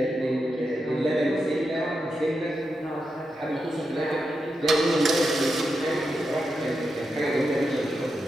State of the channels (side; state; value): both; normal; correlation 0.87